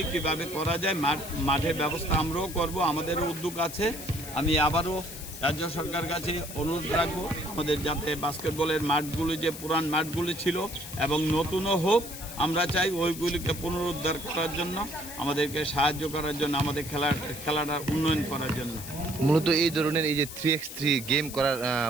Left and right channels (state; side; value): noise; left; hiss, 11 dB below the sound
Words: কিভাবে করা যায়। মাঠের ব্যবস্থা আমরাও করব, আমাদেরও উদ্যোগ আছে। আমি আবারও রাজ্য সরকার কাছে অনুরোধ রাখবো আমাদের যাতে বাস্কেটবলের মাঠগুলি যে পুরান মাঠগুলি ছিল এবং নতুনও হোক, আমরা চাই ওইগুলিকে পুনরুদ্ধার করার জন্য, আমাদেরকে সাহায্য করার জন্য, আমাদের খেলাটা উন্নয়ন করার জন্য। মূলত এই ধরনের এই যে 3x3 গেম করার